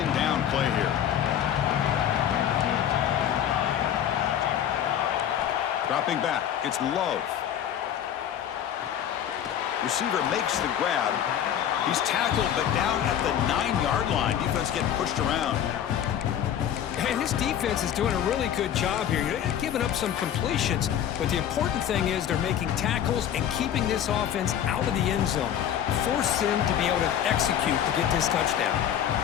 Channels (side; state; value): right; quieter; 10.0 dB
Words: down play here. Dropping back. It's Love. Receiver makes the grab. He's tackled, but down at the 9-yard line. Defense getting pushed around. Hey, this defense is doing a really good job here. They're giving up some completions, but the important thing is they're making tackles and keeping this offense out of the end zone. Force them to be able to execute to get this touchdown.